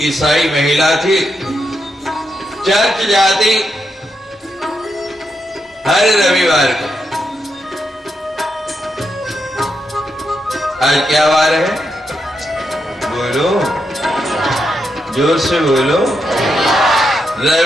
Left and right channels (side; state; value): both; normal; correlation 0.83